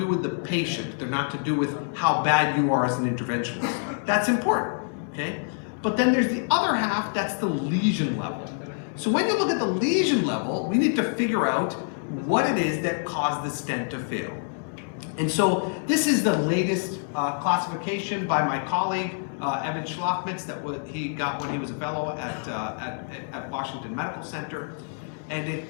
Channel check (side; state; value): right; silent; 61 dB below the other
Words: with the patient. They're not to do with how bad you are as an interventionist. That's important, okay? But then there's the other half, that's the lesion level. So when you look at the lesion level, we need to figure out what it is that caused the stent to fail. And so this is the latest classification by my colleague, Evan Schlafmitz, that he got when he was a fellow at Washington Medical Center. And it